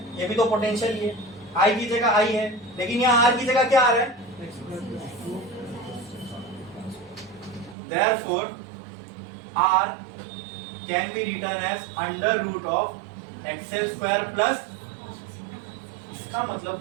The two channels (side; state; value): left; drops out; at 7.8 s